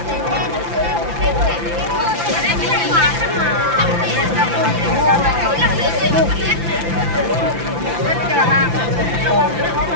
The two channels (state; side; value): late; left; 5.9 ms